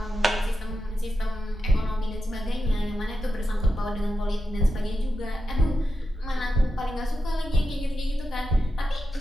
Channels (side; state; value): both; normal; correlation 0.88